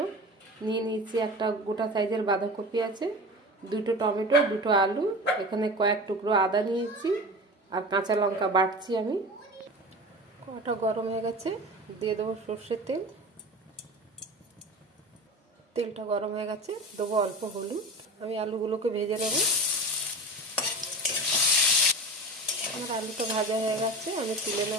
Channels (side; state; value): both; normal; correlation 0.32